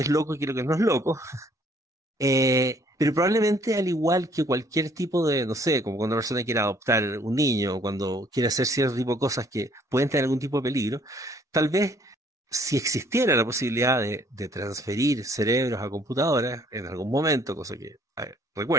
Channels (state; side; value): normal; both; correlation 0.62